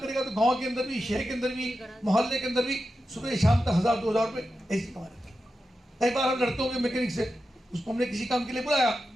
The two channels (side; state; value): both; normal; correlation 0.90